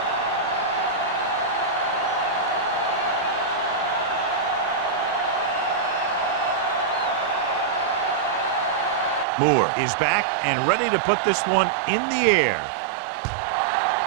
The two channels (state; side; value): drops out; left; at 9.2 s